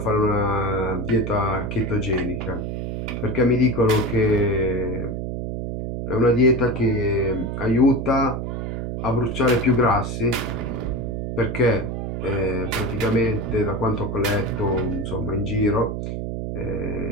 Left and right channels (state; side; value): noise; right; hum, 4 dB below the sound